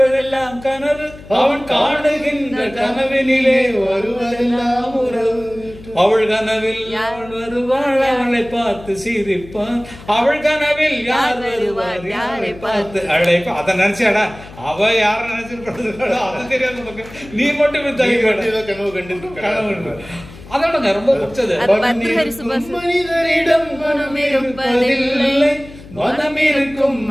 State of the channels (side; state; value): left; noise; hum, 18 dB below the sound